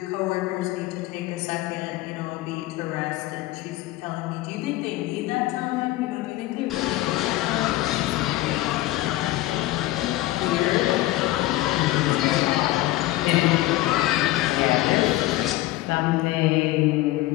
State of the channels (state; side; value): quieter; right; 17.0 dB